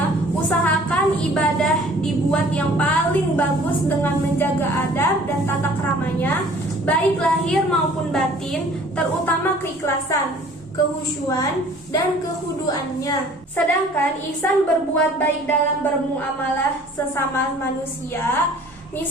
usahakan ibadah dibuat yang paling bagus dengan menjaga adab dan tata keramanya, baik lahir maupun batin, terutama keikhlasan, kehusyuan, dan kehuduannya. Sedangkan ihsan berbuat baik dalam bermuamalah sesama manusia,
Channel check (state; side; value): normal; both; correlation 0.52